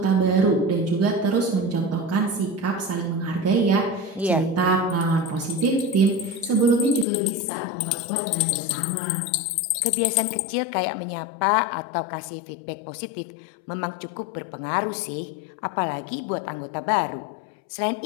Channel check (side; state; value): right; drops out; at 7.1 s